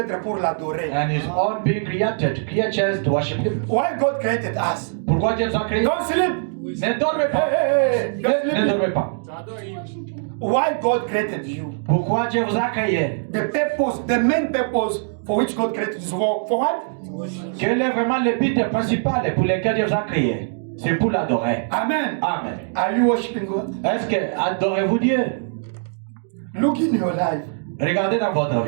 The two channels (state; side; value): silent; left; digital silence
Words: pour l'adorer. And his own being created, creatures to worship him. Why God created us? Pourquoi Dieu nous a créés? Don't sleep. Ne dormez pas. Hey, don't Ne sleep. dormez pas. Why God created you? Pourquoi Dieu vous a créé? The purpose, the main purpose for which God created you. For what? Quel est vraiment le but principal pour lequel Dieu vous a créé? C'est pour l'adorer. Amen. Amen. Are you worshiping God? Est-ce que adorez-vous Dieu? Look in your life. Regardez dans votre